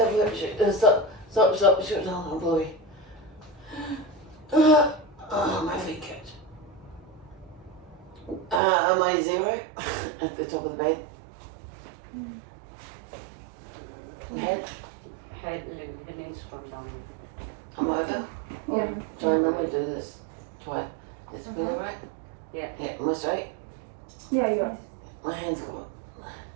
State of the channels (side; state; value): left; drops out; at 8.6 s